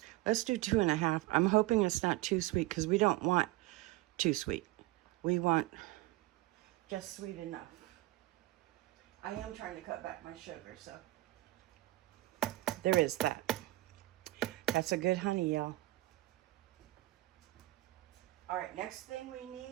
Let's do 2.5. I'm hoping it's not too sweet, because we don't want too sweet. We want just sweet enough. I am trying to cut back my sugar, so there is that. That's a good honey, y'all. All right, next thing we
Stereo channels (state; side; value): quieter; left; 18.7 dB